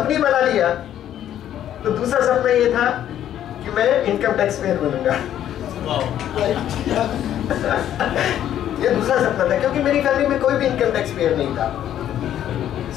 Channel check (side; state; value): right; quieter; 11.1 dB